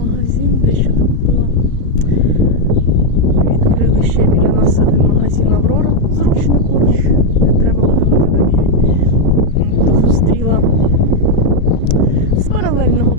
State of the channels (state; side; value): late; right; 35 ms